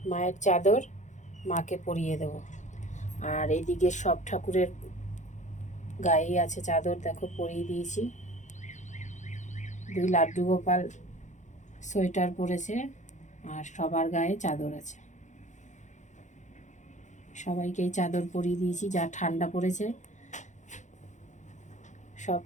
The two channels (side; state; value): right; late; 0.35 ms